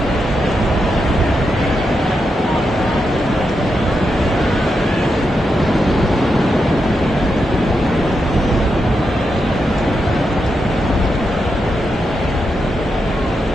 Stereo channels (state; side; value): normal; both; correlation 0.85